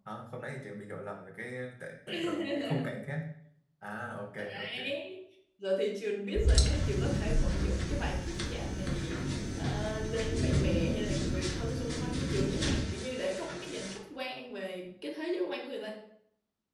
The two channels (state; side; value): identical; both; correlation 1.00